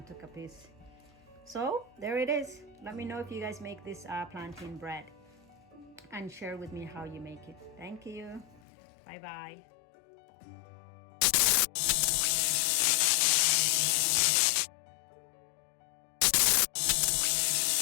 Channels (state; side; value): drops out; right; at 8.6 s